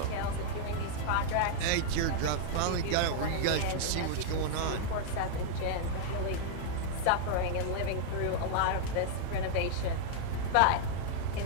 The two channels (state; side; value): different; both; correlation -0.01